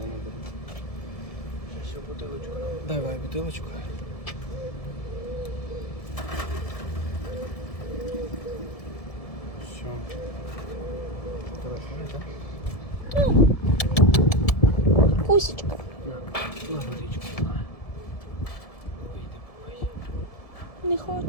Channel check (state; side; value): late; right; 1.7 ms